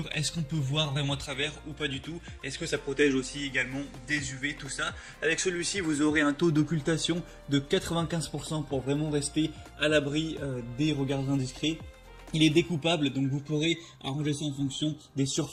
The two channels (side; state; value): both; identical; correlation 1.00